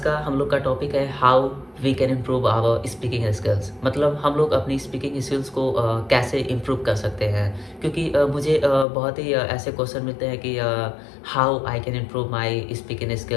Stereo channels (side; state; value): right; drops out; at 8.8 s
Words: हम लोग का टॉपिक है how we can improve our speaking skills. मतलब हम लोग अपनी स्पीकिंग स्किल्स को कैसे इम्प्रूव कर सकते हैं। क्योंकि मुझे बहुत ही ऐसे क्वेश्चन मिलते हैं कि how I can improve my speaking